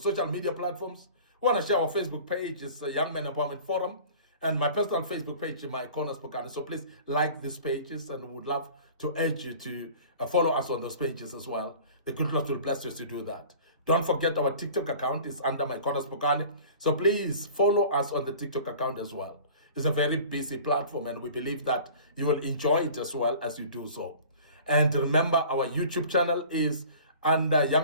media platforms. We want to share our Facebook page. It's Young Men Empowerment Forum. And my personal Facebook page, MIcornus Phokane. So please like these pages, and we would love to urge you to follow us on those pages as well. The good Lord will bless us to do that. Don't forget our TikTok account is under MIcornus Phokane. So please follow us on the TikTok account as well. It's a very busy platform, and we believe that you will enjoy it as well as you do so. And remember, our YouTube channel is under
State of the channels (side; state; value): both; inverted; correlation -0.43